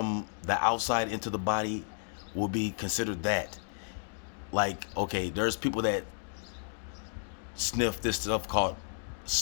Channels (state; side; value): silent; right; digital silence